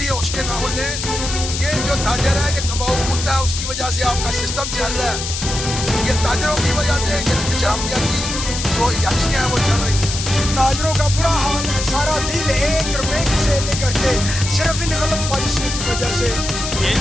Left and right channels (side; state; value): left; noise; hiss, 5 dB below the sound